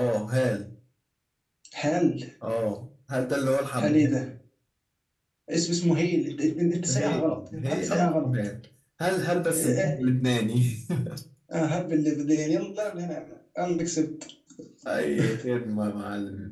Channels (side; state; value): both; identical; correlation 1.00